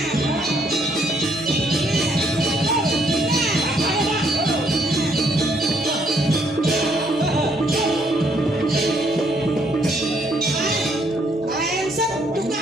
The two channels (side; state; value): both; normal; correlation 0.69